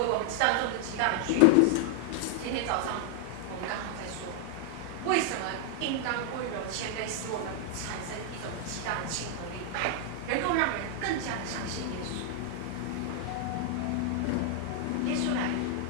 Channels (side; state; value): both; different; correlation 0.00